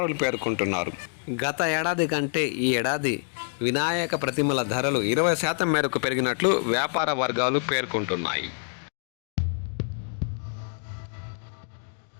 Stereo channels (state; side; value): silent; right; 60 dB below the other